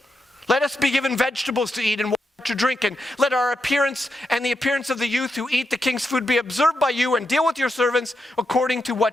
Let us be given vegetables to eat and water to drink, and let our appearance and the appearance of the youth who eat the king's food be observed by you, and deal with your servants according to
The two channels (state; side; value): normal; both; correlation 0.84